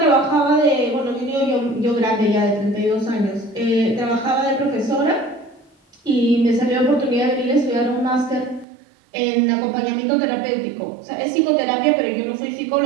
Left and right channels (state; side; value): drops out; left; at 8.7 s